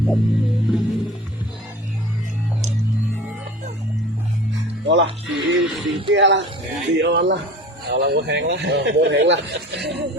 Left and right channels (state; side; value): normal; both; correlation 0.40